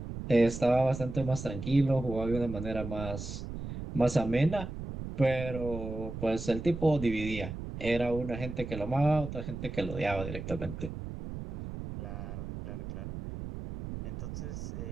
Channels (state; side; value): noise; right; rumble, 8 dB below the sound